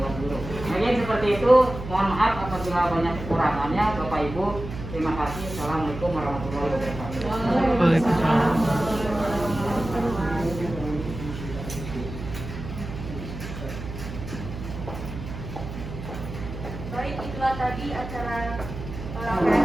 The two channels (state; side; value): noise; right; hum, 9 dB below the sound